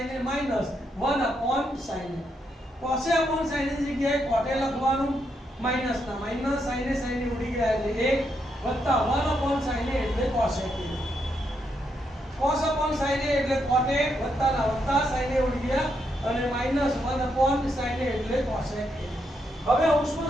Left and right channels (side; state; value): both; normal; correlation 0.79